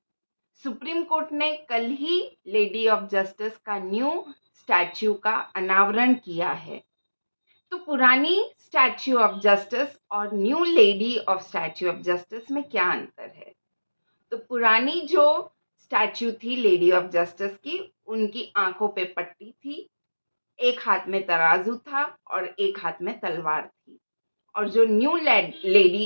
Supreme court ने कल ही lady of justice का new statue का अनावरण किया है। तो पुरानी स्टैच्यू ऑफ जस्टिस और new lady of statue of justice में क्या अंतर है? तो पुरानी जो स्टैच्यू थी लेडी ऑफ जस्टिस की, उनकी आंखों पे पट्टी थी, एक हाथ में तराजू था और एक हाथ में तलवार थी। और जो न्यू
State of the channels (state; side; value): inverted; both; correlation -1.00